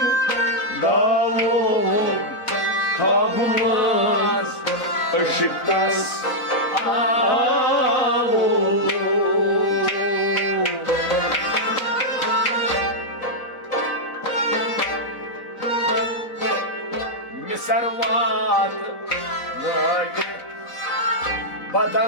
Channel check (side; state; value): right; late; 4.0 ms